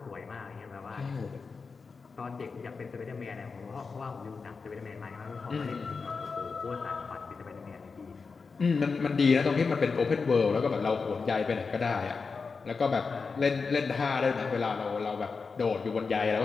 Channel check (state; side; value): quieter; right; 4.8 dB